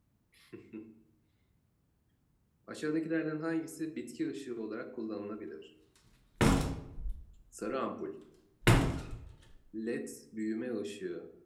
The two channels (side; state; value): both; identical; correlation 1.00